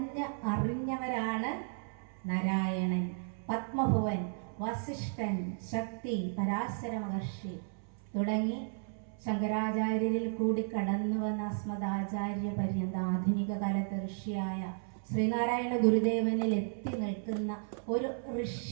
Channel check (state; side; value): silent; left; 55 dB below the other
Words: അറിഞ്ഞവരാണ് നാരായണൻ, പത്മഭുവൻ, വസിഷ്ഠൻ, ശക്തി, പരാശര മഹർഷി തുടങ്ങി ശങ്കരാചാര്യരിൽ കൂടി കടന്നു വന്ന അസ്മദാചാര്യ പര്യന്ത ആധുനിക കാലത്ത് ഋഷിയായ ശ്രീനാരായണ ഗുരുദേവനിൽ എത്തി നിൽക്കുന്ന ഒരു